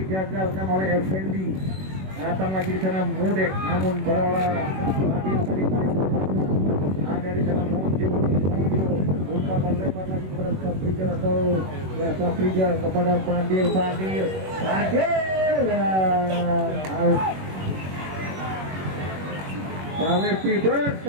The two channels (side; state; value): left; late; 21 ms